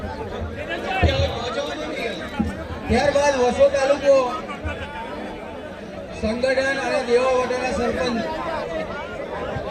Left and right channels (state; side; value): identical; both; correlation 1.00